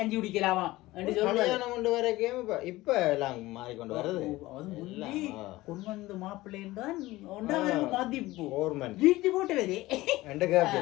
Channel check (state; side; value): quieter; right; 18.4 dB